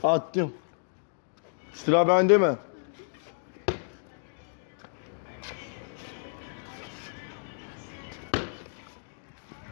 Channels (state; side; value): silent; right; digital silence